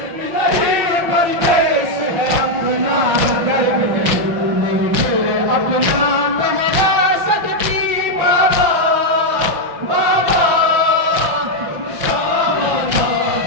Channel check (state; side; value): late; left; 5.8 ms